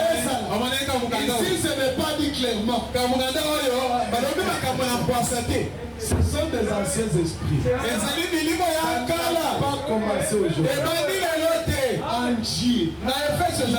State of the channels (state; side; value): identical; both; correlation 1.00